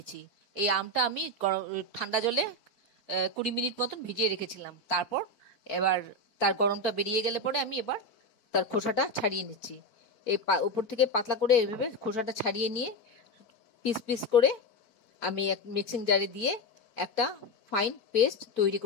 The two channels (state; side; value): late; right; 4.6 ms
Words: এই আমটা আমি ঠান্ডা জলে 20 মিনিট মতন ভিজিয়ে রেখেছিলাম। তারপর এবার তার গরমটা বেরিয়ে গেলে পরে আমি এবার তার খোসাটা ছাড়িয়ে নিচ্ছি। এই উপর থেকে পাতলা করে এইভাবে খোসাটা ছাড়িয়ে নিয়ে পিস পিস করে আমি এক মিক্সিং জারে দিয়ে একটা ফাইন পেস্ট তৈরি